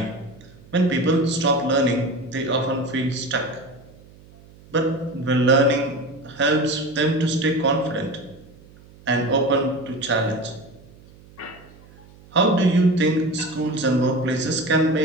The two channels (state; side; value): noise; right; hum, 24 dB below the sound